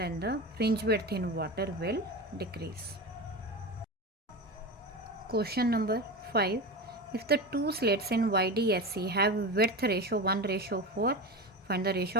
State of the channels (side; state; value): both; normal; correlation 0.24